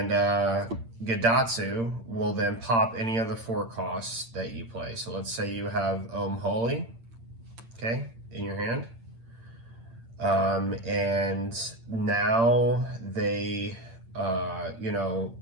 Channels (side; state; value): left; late; 8.8 ms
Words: Gadatsu will then pop any of the 4 costs that you play. So let's say you have Holy, okay, in your hand. And now they,